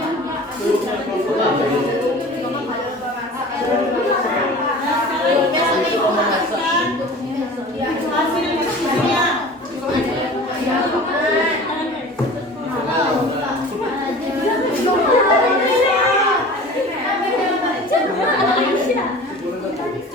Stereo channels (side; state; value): both; normal; correlation 0.40